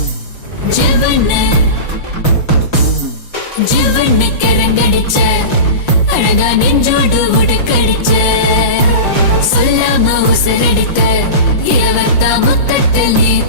ஜீவன கரங்கடிச்ச அழகா நெஞ்சோடு உடுக்கடிச்ச, சொல்லாம உசரடித்த இளவத்தா முத்தத்தில் நீ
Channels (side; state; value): right; late; 5.7 ms